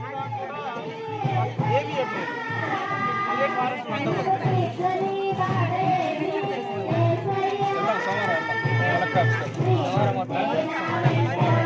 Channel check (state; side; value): identical; both; correlation 1.00